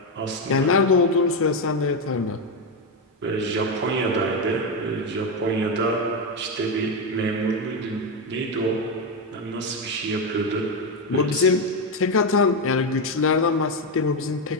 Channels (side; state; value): both; normal; correlation 0.09